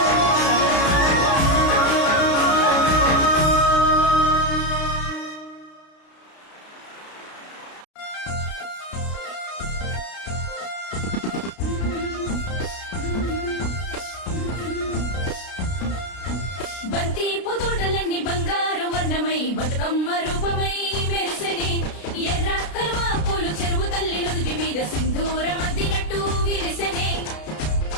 బంతి పుదోటలన్నీ బంగారు వర్ణమై బతుకమ్మ రూపమై మెరిసెనే, ఎర్ర కలువ పూలు చెరువు తల్లి నుదుటి మీద సింధూరం అద్దినట్టు విరిసెనే.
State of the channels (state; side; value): late; right; 32 ms